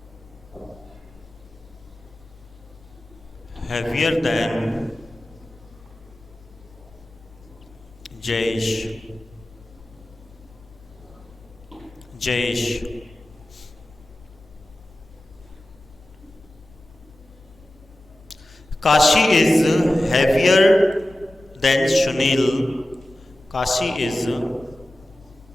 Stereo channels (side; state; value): left; noise; hum, 27 dB below the sound